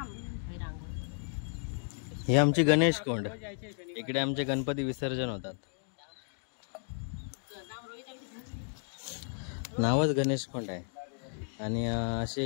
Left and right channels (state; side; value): silent; right; 55 dB below the other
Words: हे आमची गणेश कोंड, इकडे आमचे गणपती विसर्जन होतात। नावच गणेश कोंड आहे। आणि